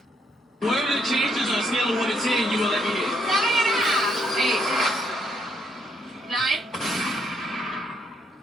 What are the chances on a scale of 1 to 10 you will let me hit? 7.5. 8. 9.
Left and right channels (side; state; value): both; normal; correlation 0.73